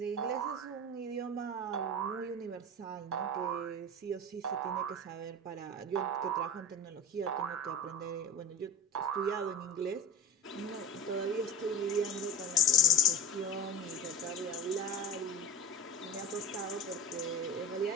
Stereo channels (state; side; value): normal; both; correlation 0.30